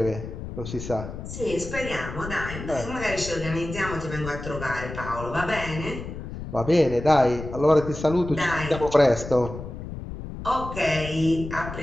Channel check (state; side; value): noise; left; rumble, 9 dB below the sound